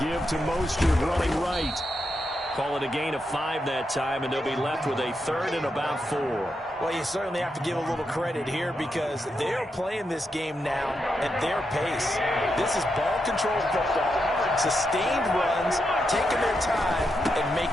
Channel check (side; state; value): both; normal; correlation 0.84